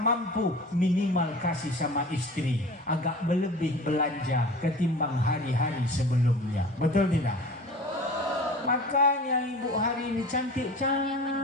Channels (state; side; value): normal; both; correlation 0.39